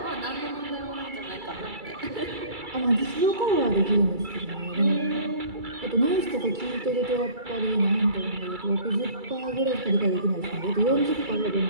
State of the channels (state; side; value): late; left; 2.3 ms